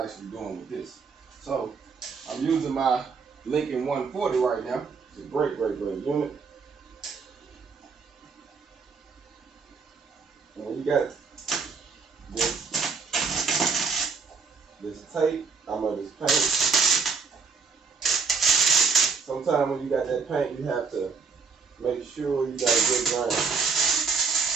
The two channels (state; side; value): quieter; left; 5.2 dB